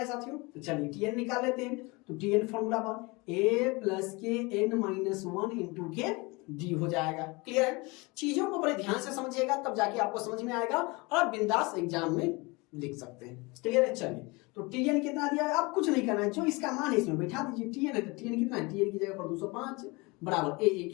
साथियों, तो चलिए टीएन निकाल लेते हैं। तो Tn फॉर्मूला पर a प्लस के n माइनस 1 इंटू के डी हो जाएगा। क्लियर है? चीजों को बड़े ध्यान से समझिएगा, तब जाके आपको समझ में आएगा और आप बिंदास एग्जाम में लिख सकते हैं। क्लियर है? चलिए, तो Tn कितना दिया है, आप कुछ नहीं करना है, जो इसका मान है इसमें बैठा दीजिए। Tn है तो Tn कितना है, Tn की जगह पर 205 बराबर a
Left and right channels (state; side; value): quieter; right; 25.7 dB